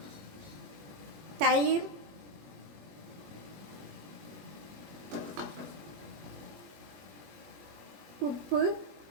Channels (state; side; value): late; left; 21 ms